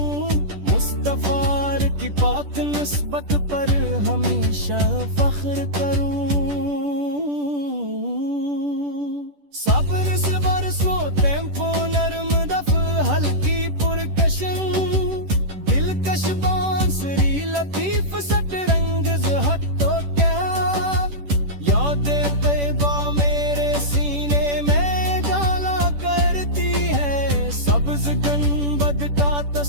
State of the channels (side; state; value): left; late; 10 ms